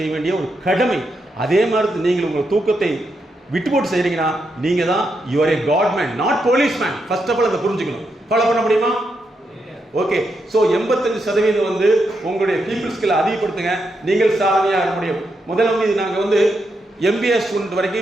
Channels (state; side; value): normal; both; correlation 0.83